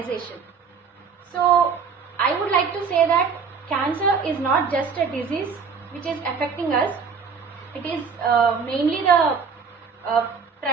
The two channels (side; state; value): left; quieter; 5.8 dB